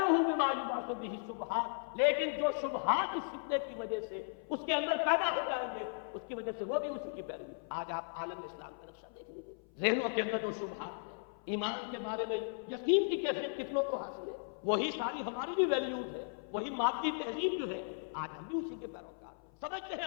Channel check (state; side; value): silent; right; 53 dB below the other